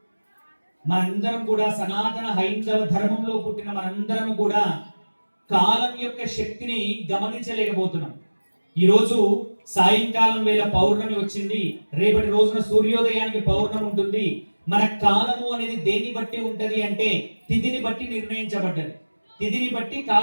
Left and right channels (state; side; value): inverted; both; correlation -1.00